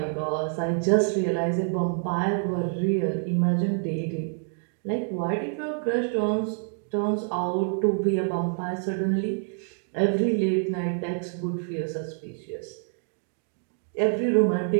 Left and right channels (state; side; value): silent; left; 60 dB below the other